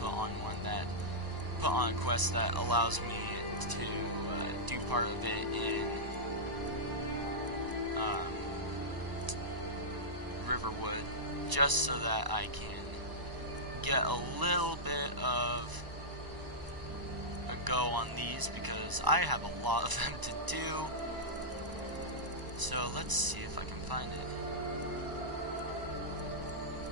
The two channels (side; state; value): left; late; 1.0 ms